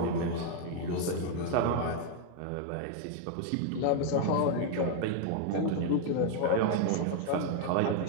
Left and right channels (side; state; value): both; different; correlation 0.00